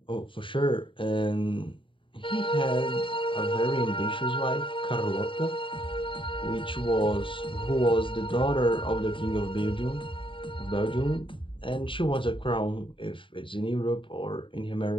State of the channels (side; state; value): right; late; 0.25 ms